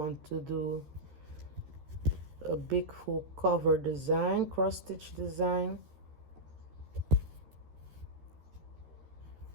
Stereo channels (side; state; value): left; late; 13 ms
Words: to do a big full cover design, cross stitch design.